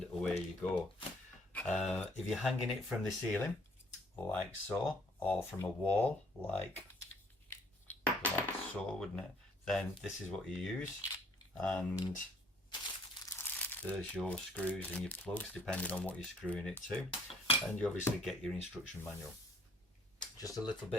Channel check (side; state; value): both; normal; correlation 0.62